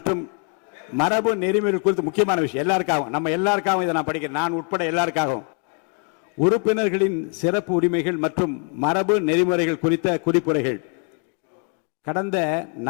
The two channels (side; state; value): right; quieter; 37.5 dB